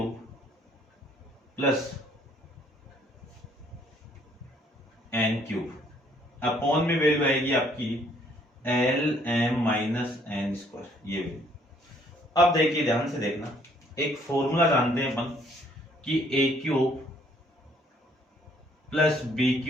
plus n cube, upon में वैल्यू आएगी आपकी l m minus n square, ये वैल्यू। अब देखिए ध्यान से देखना, एक फॉर्मूला जानते हैं अपन कि A cube plus B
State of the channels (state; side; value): normal; both; correlation 0.64